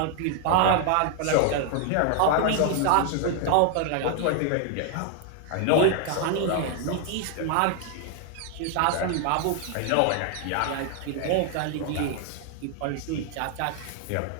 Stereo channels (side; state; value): both; different; correlation 0.00